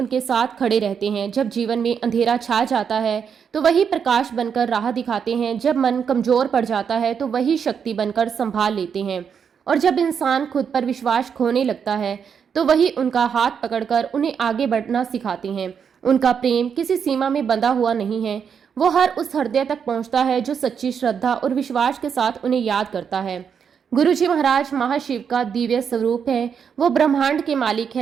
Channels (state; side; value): quieter; left; 7.1 dB